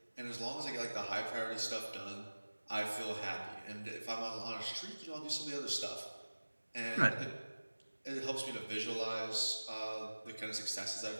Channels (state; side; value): inverted; both; correlation -1.00